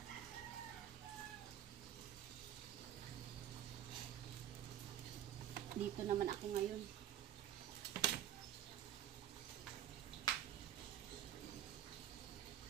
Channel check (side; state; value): left; quieter; 11.2 dB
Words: Dito naman ako ngayon.